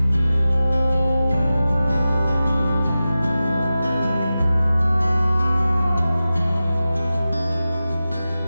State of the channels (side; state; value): both; inverted; correlation -0.94